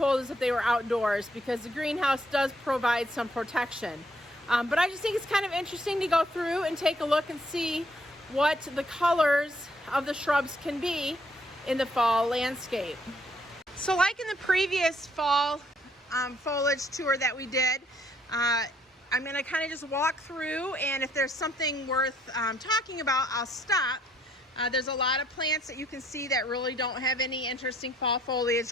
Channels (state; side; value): normal; both; correlation 0.67